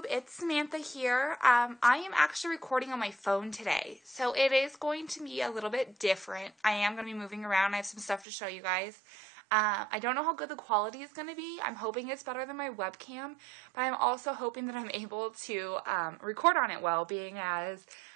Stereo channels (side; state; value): left; drops out; at 8.2 s